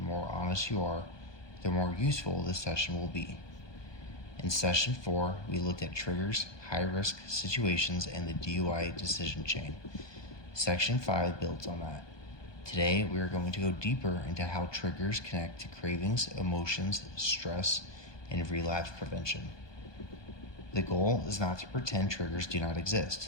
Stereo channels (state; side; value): late; right; 1.2 ms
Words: honest you are, the more useful this session will be. In Session 4, we looked at triggers, high-risk situations, and the DUI decision chain. Section 5 builds on that. Today, we are going to go deeper into how triggers connect to cravings, emotions, stress, and relapse prevention. The goal is not to pretend triggers do not